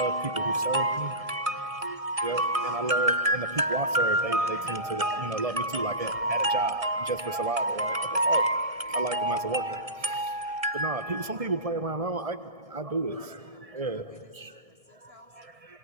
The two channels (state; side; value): late; left; 1.6 ms